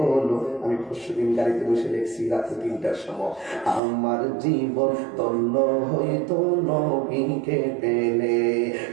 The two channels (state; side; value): drops out; left; at 3.8 s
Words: আমি পরশুদিন গাড়িতে বসে দেখছি রাতে 3টার সময়। আমার জীবন ধন্য হয়তো নবীকে পেলে,